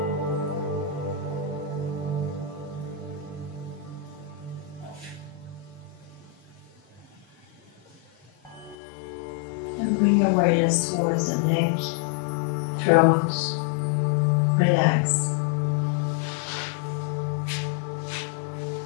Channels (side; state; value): right; drops out; at 8.8 s